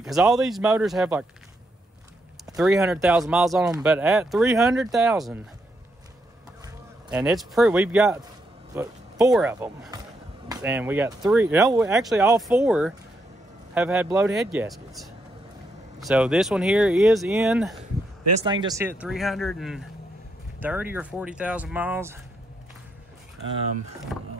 because all these motors have like 300,000 miles on them. But at 300,000, and it's pretty. We've got 4 of them, and we got 3. No, actually, all 4 have had blowed head gaskets. So this one here is in. This thing just hit 330 or 40,000 miles. I don't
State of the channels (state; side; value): normal; both; correlation 0.78